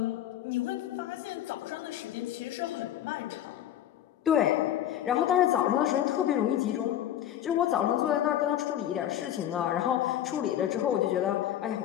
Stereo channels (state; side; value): quieter; right; 11.5 dB